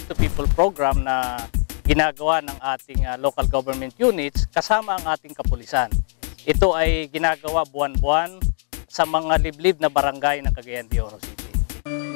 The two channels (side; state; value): right; silent; 58 dB below the other